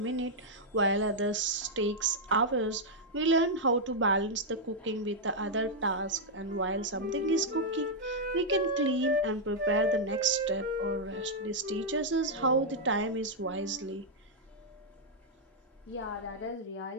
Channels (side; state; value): both; normal; correlation -0.05